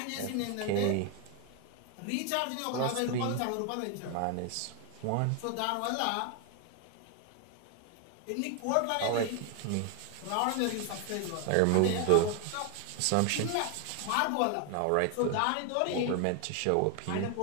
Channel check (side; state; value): both; different; correlation 0.01